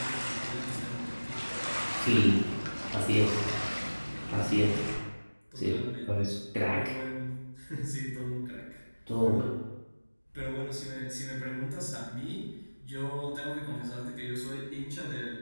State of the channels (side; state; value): both; inverted; correlation -1.00